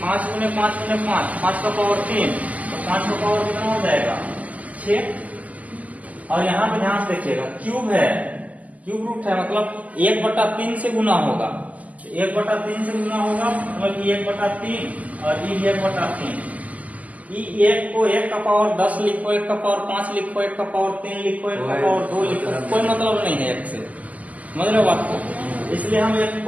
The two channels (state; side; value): late; left; 0.075 ms